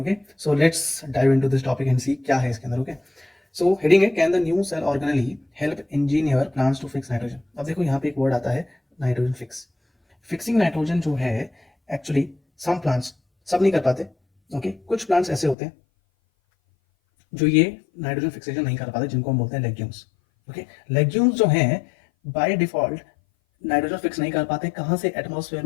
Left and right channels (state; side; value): drops out; right; at 15.6 s